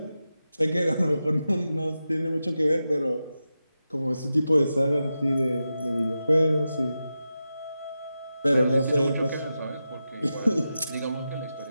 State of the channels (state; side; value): inverted; both; correlation -0.91